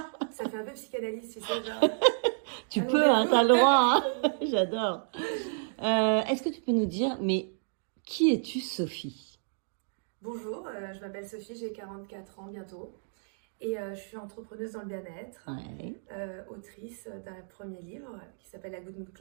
Ça fait un peu psychanalyse, tu sais, genre... Tu peux, hein, t'as le droit. Hein. J'adore. Est-ce que tu peux nous dire, mais qui es-tu, Sophie? Bonjour, je m'appelle Sophie, j'ai 44 ans bientôt. Et je suis entrepreneuse dans le bien-être, Ouais. autrice d'un premier livre qui s'appelle La Good Mood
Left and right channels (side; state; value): left; silent; digital silence